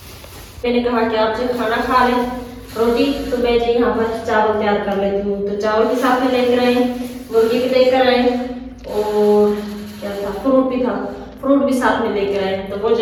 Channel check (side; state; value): both; identical; correlation 1.00